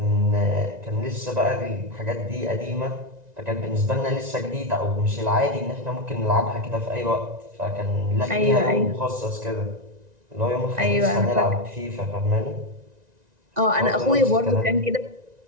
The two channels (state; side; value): late; left; 1.9 ms